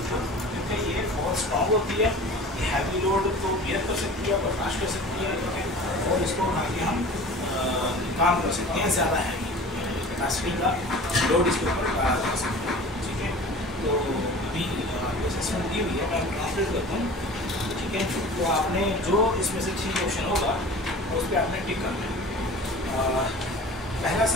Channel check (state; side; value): normal; both; correlation 0.40